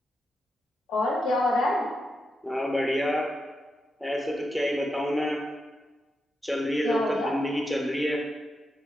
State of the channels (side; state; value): both; normal; correlation 0.86